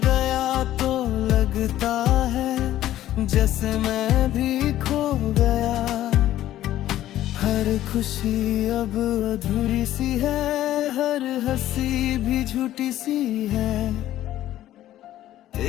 गया तो लगता है जैसे मैं भी खो गया हर खुशी अब अधूरी सी है हर हंसी भी झूठी सी है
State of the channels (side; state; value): right; quieter; 13.4 dB